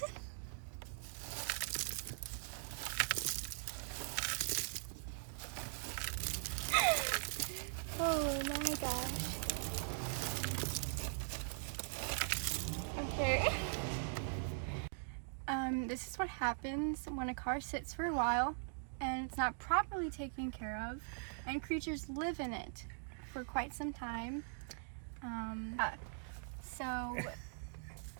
Oh my gosh. Okay. This is what happens when a car sits for a while and it's not properly taken care of, and creatures live in it for quite some time. So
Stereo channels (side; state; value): left; silent; digital silence